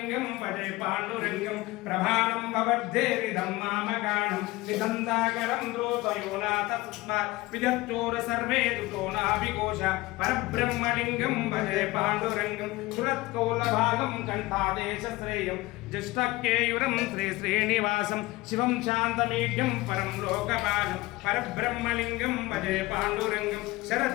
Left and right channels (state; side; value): quieter; right; 20.2 dB